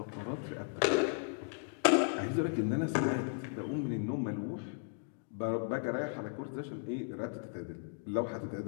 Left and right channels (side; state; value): right; silent; digital silence